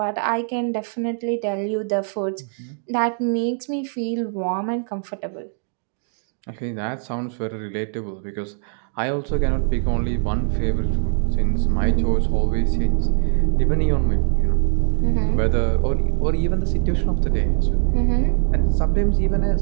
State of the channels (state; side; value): silent; left; 65 dB below the other